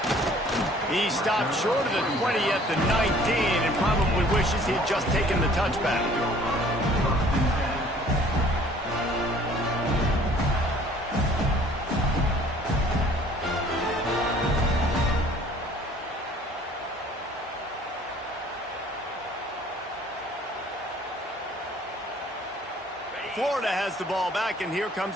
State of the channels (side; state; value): both; normal; correlation 0.54